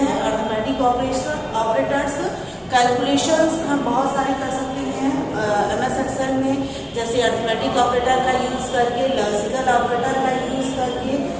हैं. अर्थमेटिक ऑपरेटर्स कैलकुलेशंस हम बहुत सारे कर सकते हैं MS Excel में, जैसे अर्थमेटिक ऑपरेटर का यूज करके, लॉजिकल ऑपरेटर का यूज करके.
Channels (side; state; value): both; identical; correlation 1.00